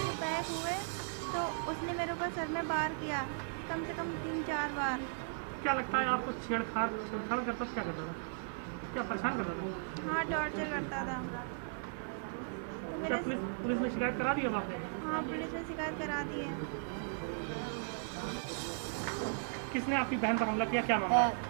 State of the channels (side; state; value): left; silent; 53 dB below the other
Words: बैक हुए तो उसने मेरे ऊपर सर में वार किया, कम से कम 3-4 बार। क्या लगता है आपको? छेड़छाड़ करता था? क्या करता था? क्या परेशान करता था? हाँ, टॉर्चर करता था। तो क्या पुलिस में शिकायत करा दी अब आपने? हाँ, पुलिस ने शिकायत करा दी है। किसने आपकी बहन पर हमला किया, क्या